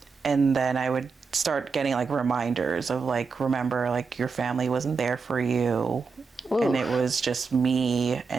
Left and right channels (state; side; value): quieter; left; 5.0 dB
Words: then I would start getting like reminders of like, remember, like your family wasn't there for you. Ooh. And it was just me,